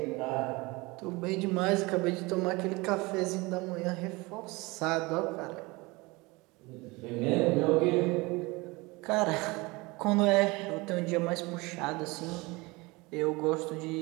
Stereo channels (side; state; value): left; quieter; 24.0 dB